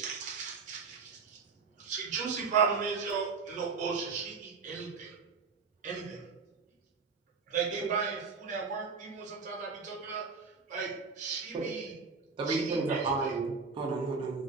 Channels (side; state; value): left; quieter; 4.9 dB